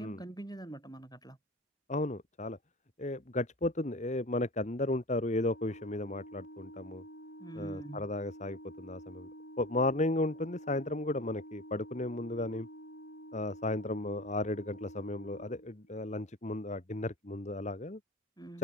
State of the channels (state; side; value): normal; both; correlation 0.35